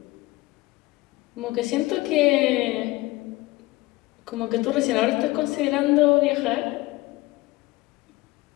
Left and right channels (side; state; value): right; quieter; 20.0 dB